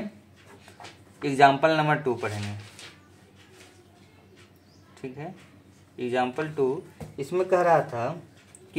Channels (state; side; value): identical; both; correlation 1.00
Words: एग्जाम्पल नंबर 2 पढ़ेंगे, ठीक है। एग्जाम्पल 2 इसमें कह रहा था